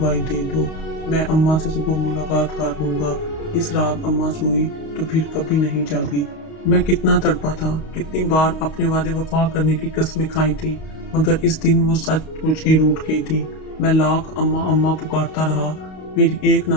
دے دو، میں اماں سے صبح ملاقات کر لوں گا۔ اس رات اماں سوئی تو پھر کبھی نہیں جاگی۔ میں کتنا تڑپا تھا، کتنی بار اپنے وعدے وفا کرنے کی قسمیں کھائی تھی، مگر اس دن وہ سچ مچ ہی روٹھ گئی تھی۔ میں لاکھ اماں اماں پکارتا رہا، میری ایک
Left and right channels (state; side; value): late; right; 32 ms